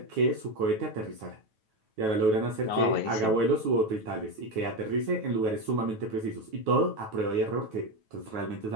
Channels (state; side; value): late; left; 9.2 ms